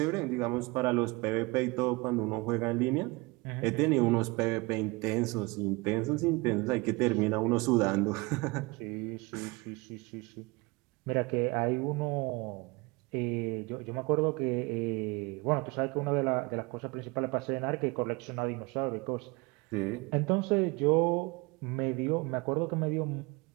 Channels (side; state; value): left; quieter; 25.3 dB